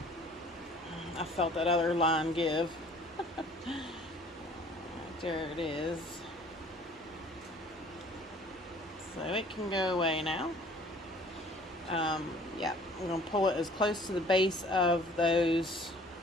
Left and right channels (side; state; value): both; normal; correlation 0.52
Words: I felt that other line give. There it is. So it can go away now. Yeah, I'm going to pull it as close to the base of those